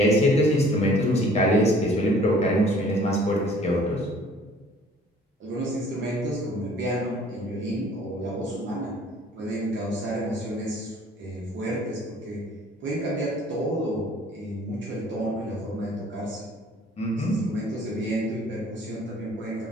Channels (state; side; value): normal; both; correlation 0.54